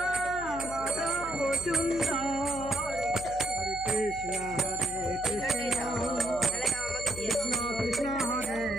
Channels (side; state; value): right; noise; hum, 15 dB below the sound